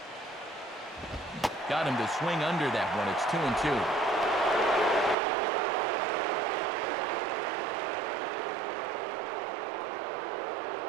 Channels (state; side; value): drops out; left; at 5.2 s